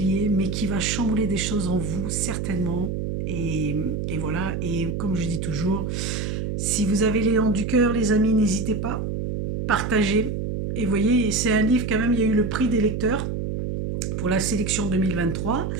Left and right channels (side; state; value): right; noise; hum, 3 dB below the sound